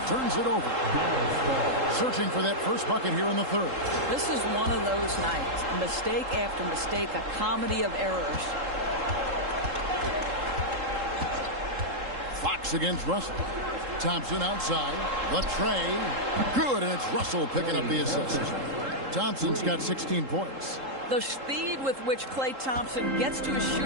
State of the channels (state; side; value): late; left; 3.7 ms